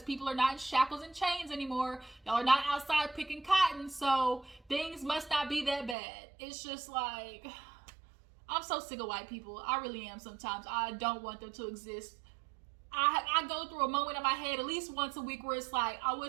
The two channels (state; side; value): drops out; left; at 6.0 s